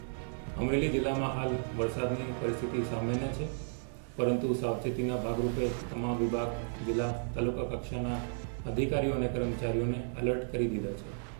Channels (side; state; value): left; silent; digital silence